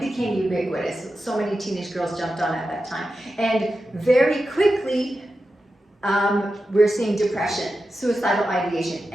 became ubiquitous. So many teenage girls jumped on at that time. And very quickly, we're seeing depression, suicidal ideation,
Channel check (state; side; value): normal; both; correlation 0.91